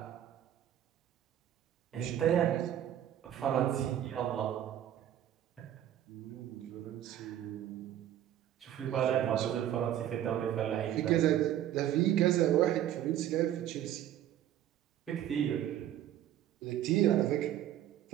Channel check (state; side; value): quieter; left; 11.4 dB